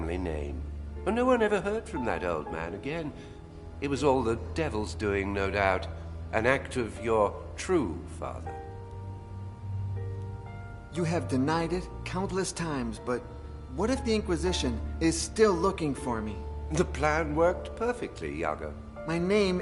name. But no one ever heard from that old man again. It was all the devil's doing, no doubt. An act of your true father. You have denied it countless times, but what if the Inquisition is still looking for me? The plan worked perfectly, Yago. My name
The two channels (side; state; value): both; identical; correlation 1.00